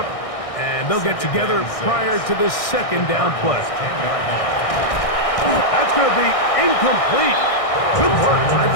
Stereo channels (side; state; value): right; late; 1.6 ms